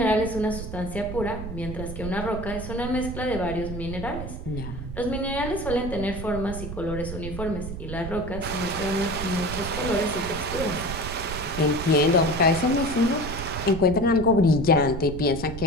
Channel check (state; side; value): noise; right; rumble, 8 dB below the sound